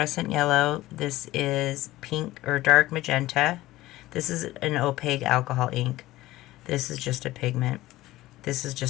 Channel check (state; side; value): quieter; right; 17.0 dB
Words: Yellow. This is pink or dark magenta. This is an opaque alcohol ink. This is just a pigment. This is